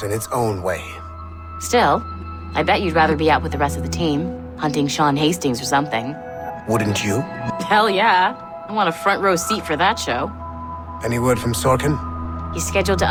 in its own way. Still, I bet you'd rather be out with the rest of the team, hunting Sean Hastings or something. Wouldn't you? Hell yeah. I want a front row seat for that show. Any word from Sorkin? He's scheduled to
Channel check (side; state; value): both; identical; correlation 1.00